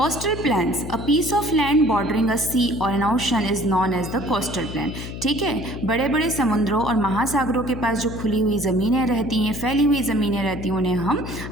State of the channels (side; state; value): left; noise; hum, 9 dB below the sound